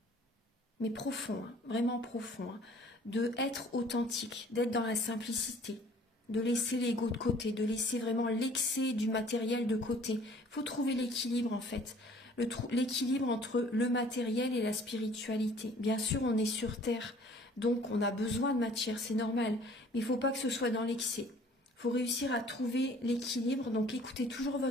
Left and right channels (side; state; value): both; normal; correlation 0.53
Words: Mais profonds, hein, vraiment profonds. Hein, de être authentique, d'être dans la simplicité, de laisser l'ego de côté, de laisser vraiment l'excès du matériel de côté. Il faut trouver l'équilibre en fait. L'équilibre entre le matériel et la spiritualité. Bien sûr, on est sur Terre. Donc, on a besoin de matière, c'est normal. Mais il ne faut pas que ce soit dans l'excès. Il faut réussir à trouver l'équilibre. Donc, écoutez toujours